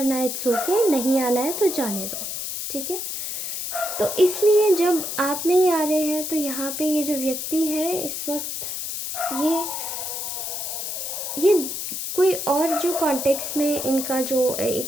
इट्स ओके, नहीं आना है तो जाने दो, ठीक है। तो इसलिए जब आप नहीं आ रहे हैं तो यहाँ पे ये जो व्यक्ति है इस वक्त ये कोई और जो कॉन्टेक्स्ट में इनका जो एक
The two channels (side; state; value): left; noise; hiss, 4 dB below the sound